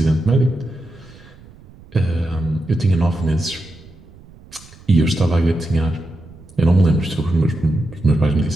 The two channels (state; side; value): noise; right; rumble, 23 dB below the sound